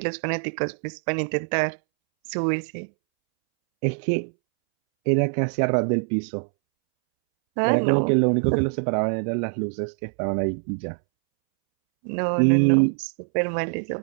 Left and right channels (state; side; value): silent; left; 63 dB below the other